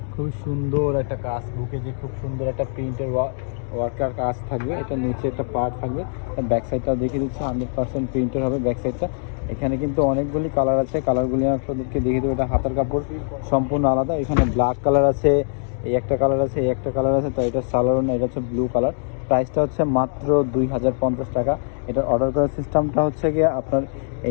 খুবই সুন্দর একটা কাজ, বুকে যে খুব সুন্দর একটা প্রিন্টের ওয়ার্কার কাজ থাকবে। এটা নিচে একটা পার্ট থাকবে, ব্যাক সাইডটা দেখিয়ে দিচ্ছি 100% প্রিন্টের হবে ব্যাক সাইডটা। এখানে কিন্তু অনেকগুলি কালার আছে, কালারগুলি আপনাদেরকে দেখিয়ে দেবো। এটা হাতার কাপড় সম্পূর্ণ আলাদা। এখানে ব্ল্যাক কালার আছে, এই একটা কালার আছে, এই একটা কালার আছে। তো এটা সালোয়ার না, এটা হচ্ছে ব্লু কালার। প্রাইসটা হচ্ছে মাত্র 2050 টাকা। এটার অর্ডার করার সিস্টেমটা হচ্ছে গিয়ে আপনার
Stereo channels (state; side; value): silent; right; 62 dB below the other